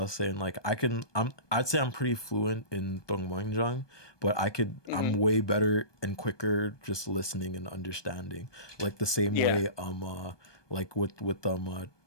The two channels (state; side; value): late; right; 1.2 ms